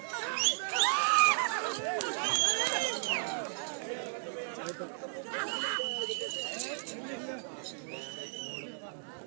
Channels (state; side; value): silent; left; digital silence